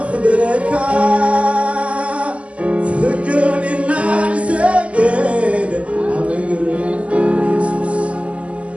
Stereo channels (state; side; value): late; left; 0.062 ms